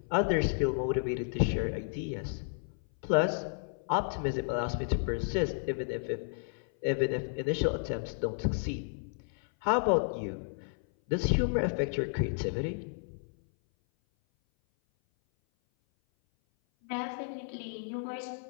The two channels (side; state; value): right; silent; 56 dB below the other